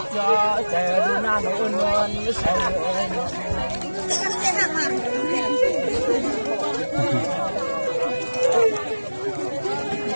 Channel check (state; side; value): inverted; both; correlation -1.00